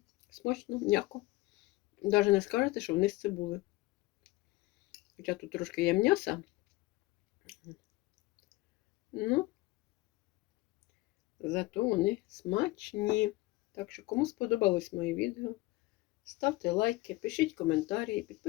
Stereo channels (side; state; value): right; quieter; 19.5 dB